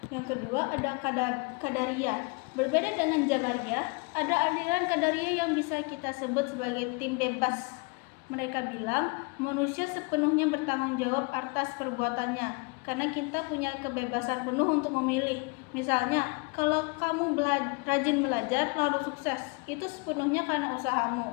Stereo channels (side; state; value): right; quieter; 31.5 dB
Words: Yang kedua ada Qadariyah. Berbeda dengan Jabariyah, ada aliran Qadariyah yang bisa kita sebut sebagai tim bebas. Mereka bilang manusia sepenuhnya bertanggung jawab atas perbuatannya, karena kita punya kebebasan penuh untuk memilih. Misalnya, kalau kamu rajin belajar lalu sukses, itu sepenuhnya karena usahamu,